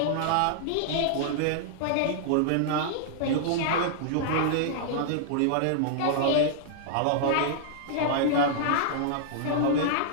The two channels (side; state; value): both; different; correlation -0.01